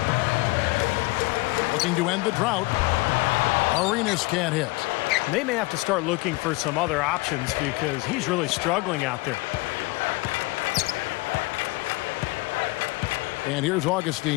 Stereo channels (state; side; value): quieter; right; 23.3 dB